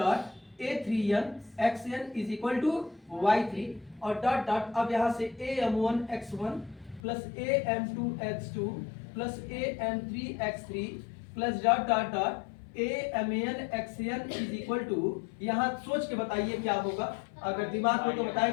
a3nxn is equal to y3 और डॉट डॉट अब यहाँ से am1x1 plus am2x2 plus am3x3 plus dot dot dot amnxn is equal to, यहाँ सोच के बताइए क्या होगा। अगर दिमाग हो तो बताए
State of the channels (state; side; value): drops out; right; at 7.0 s